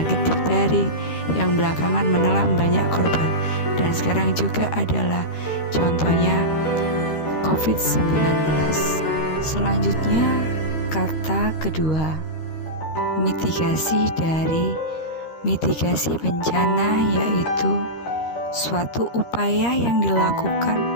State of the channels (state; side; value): late; right; 13 ms